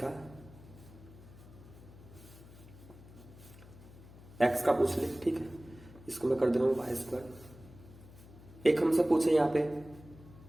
x का पूछ ले, ठीक है, इसको मैं कर दे रहा हूं वाई स्क्वायर। एक हमसे पूछे यहाँ पे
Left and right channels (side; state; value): left; noise; hum, 19 dB below the sound